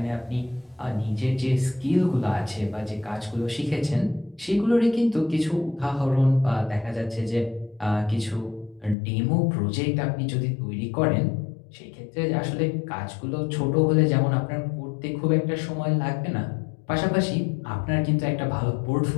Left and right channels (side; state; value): right; drops out; at 9.0 s